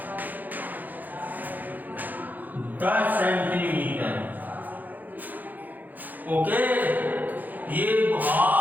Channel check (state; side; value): late; left; 0.084 ms